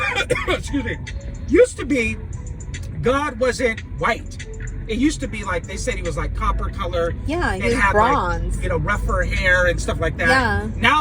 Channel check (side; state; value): both; identical; correlation 1.00